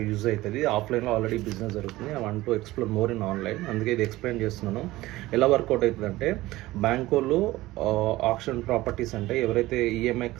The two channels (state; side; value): quieter; left; 17.8 dB